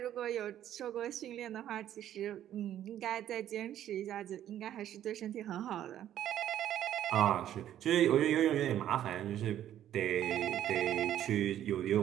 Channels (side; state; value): left; quieter; 11.4 dB